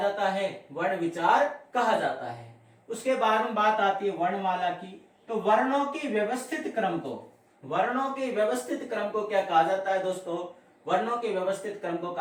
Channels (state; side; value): identical; both; correlation 1.00